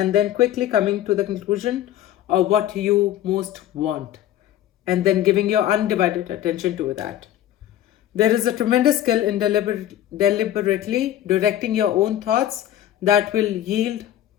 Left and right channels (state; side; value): quieter; right; 12.3 dB